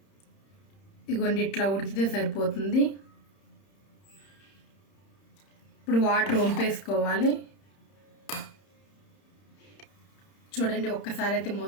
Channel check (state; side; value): late; right; 31 ms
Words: ఇగోండి ఇట్లా ఉడికితే సరిపోతుంది. ఇప్పుడు వాటర్ వంపేసుకోవాలి. చూడండి ఒక్కసారి అయితే